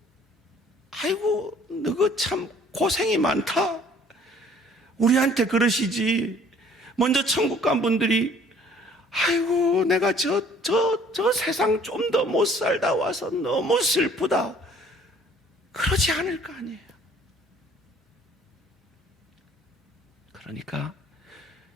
아이고 너가 참 고생이 많다, 우리한테 그러시지. 먼저 천국 간 분들이 아이고 내가 저 세상 좀 더 못 살다 와서 너무 슬프다, 그러지 않을 거 아니에요. 그러니까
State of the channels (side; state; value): both; normal; correlation 0.56